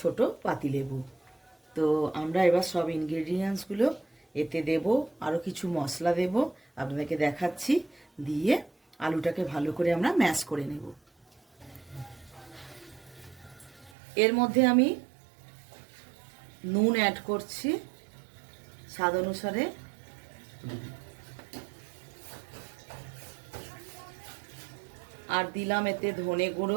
পাতিলেবু। তো আমরা এবার সব ইনগ্রেডিয়েন্টসগুলো এতে দেব, আরও কিছু মশলা দেব, আপনাদেরকে দেখাচ্ছি। দিয়ে আলুটাকে ভালো করে আমরা ম্যাশ করে নেব। এর মধ্যে আমি নুন অ্যাড করছি স্বাদ অনুসারে, আর দিলাম এতে ধনে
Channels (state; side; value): drops out; left; at 13.9 s